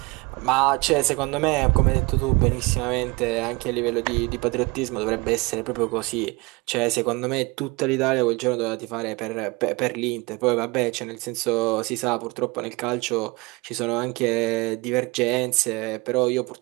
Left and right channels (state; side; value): quieter; left; 25.5 dB